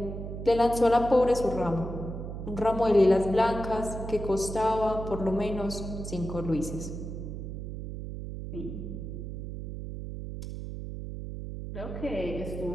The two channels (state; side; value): noise; right; hum, 7 dB below the sound